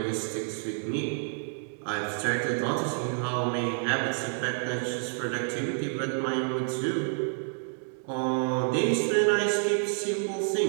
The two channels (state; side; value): silent; left; digital silence